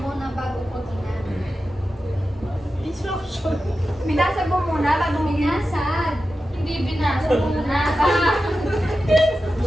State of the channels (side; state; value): both; normal; correlation 0.92